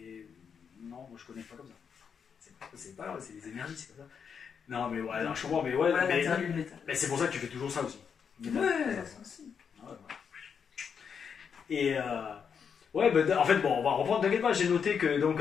non, moi je connais pas comme ça. C'est des énergies, c'est comme ça. Non, mais ouais, non, je comprends, mais ouais, Voilà mais, l'intérêt du métal. mais c'est pour ça que tu fais toujours ça aussi. Ouais, ça aussi. Ouais, voilà. Et ouais, bah, en fait, bon, on va reprendre. T'inquiète pas, j'ai noté que donc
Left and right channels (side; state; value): right; quieter; 6.8 dB